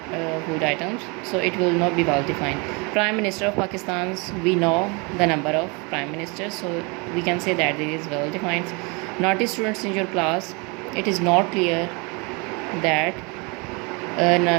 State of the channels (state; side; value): quieter; left; 30.0 dB